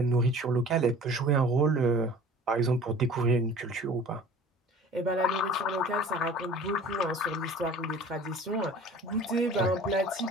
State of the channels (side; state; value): both; normal; correlation 0.45